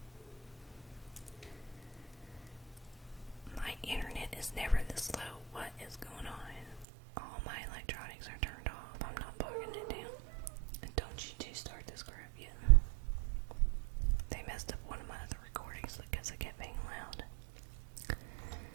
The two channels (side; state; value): left; drops out; at 6.9 s